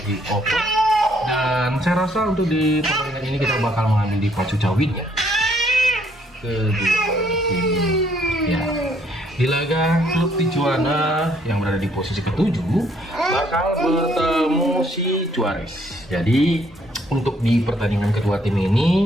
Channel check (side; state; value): both; normal; correlation 0.67